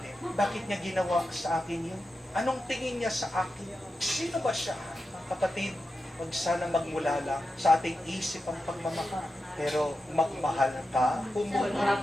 bakit niya ginawa sa akin yun? Anong tingin niya sa akin? Sino ba siya? Kapatid, huwag sana magmula lang sa ating isip ang pagmamahal. Pero magmahal ka, pumunod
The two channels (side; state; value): both; normal; correlation 0.90